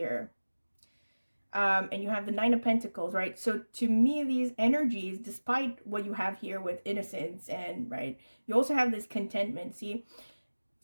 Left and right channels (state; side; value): inverted; both; correlation -1.00